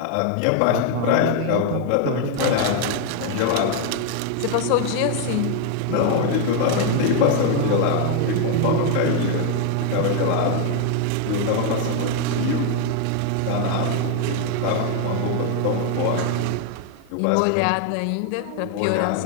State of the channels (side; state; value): both; different; correlation 0.01